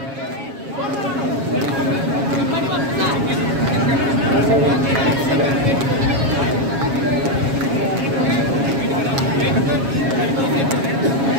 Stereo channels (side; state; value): left; late; 7.3 ms